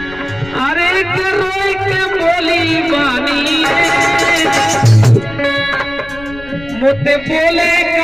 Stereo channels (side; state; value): left; noise; rumble, 18 dB below the sound